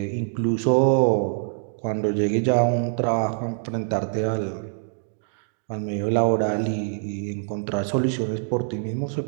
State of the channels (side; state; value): left; silent; digital silence